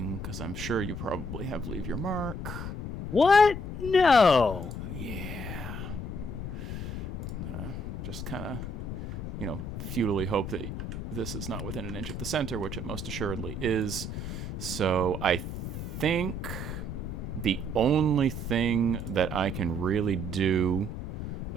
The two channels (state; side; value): noise; left; rumble, 6 dB below the sound